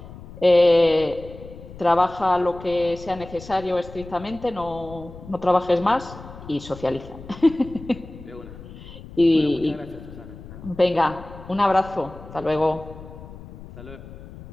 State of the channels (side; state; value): left; noise; rumble, 16 dB below the sound